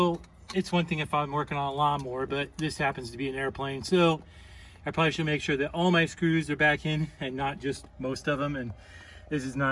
it's one thing if I'm working on a lawnmower, but this happens to be an airplane. So I probably should make sure that all my screws are back in and not just most of them. And this is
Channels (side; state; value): both; identical; correlation 1.00